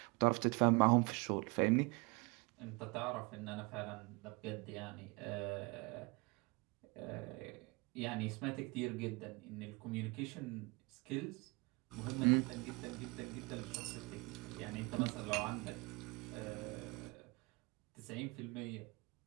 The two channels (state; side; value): quieter; left; 27.4 dB